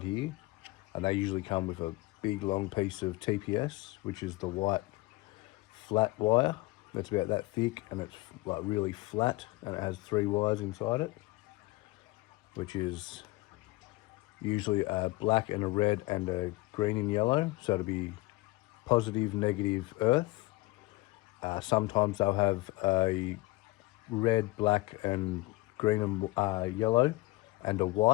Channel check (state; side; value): quieter; right; 21.1 dB